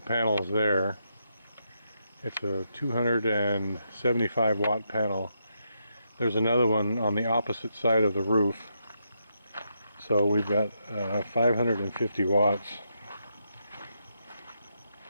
panels there. It's a 275 watt panel. There's another one on the opposite side of the roof. So we've got 550 watts.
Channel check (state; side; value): inverted; both; correlation -0.81